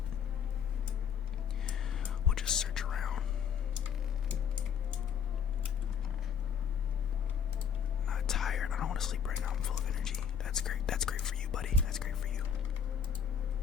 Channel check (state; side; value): quieter; right; 7.6 dB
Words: we'll just search around. Not tired. I don't want to sleep right now. I'm full of energy. That's great. That's great for you, buddy. That's great for you.